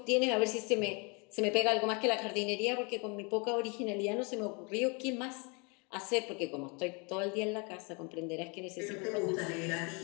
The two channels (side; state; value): right; quieter; 31.9 dB